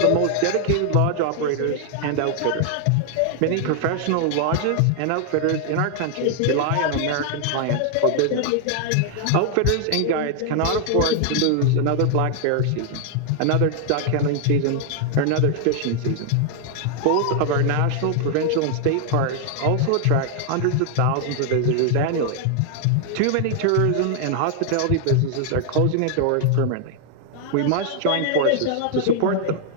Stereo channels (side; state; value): both; different; correlation 0.00